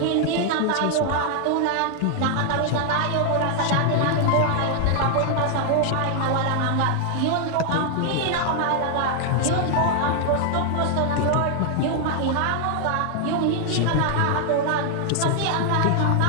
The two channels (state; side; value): different; both; correlation 0.00